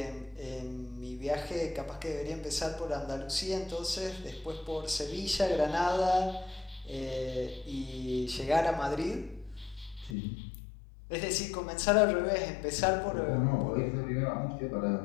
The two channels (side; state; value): right; drops out; at 10.2 s